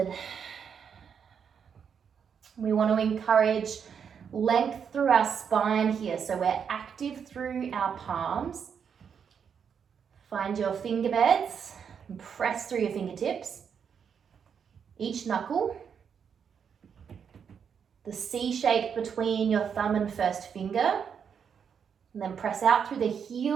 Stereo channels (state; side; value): quieter; left; 7.2 dB